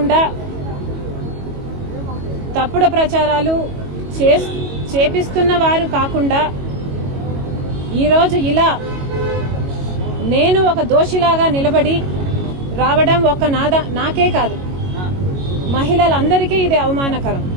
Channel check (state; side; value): late; left; 22 ms